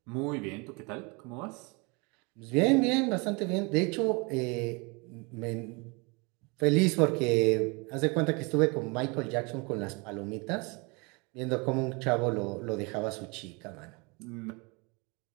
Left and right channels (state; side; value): quieter; left; 29.4 dB